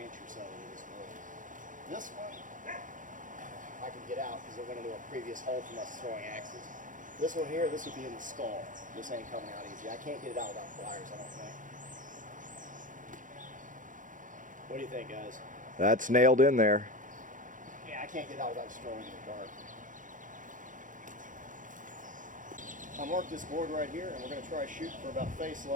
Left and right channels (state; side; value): late; left; 0.38 ms